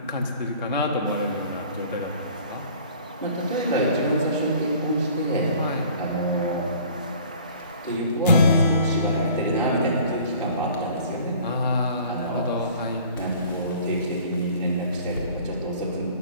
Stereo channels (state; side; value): inverted; both; correlation -0.50